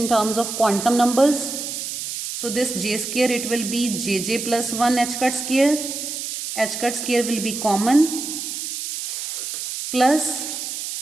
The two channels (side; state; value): right; noise; hiss, 5 dB below the sound